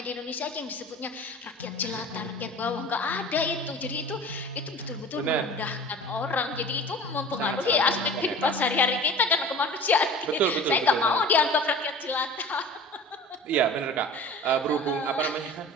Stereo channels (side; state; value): both; normal; correlation 0.40